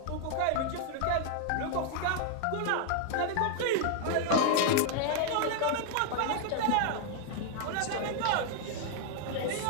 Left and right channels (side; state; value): both; different; correlation 0.00